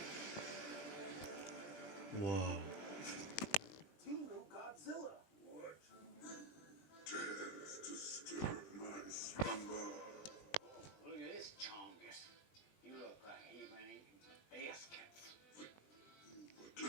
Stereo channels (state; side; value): late; right; 19 ms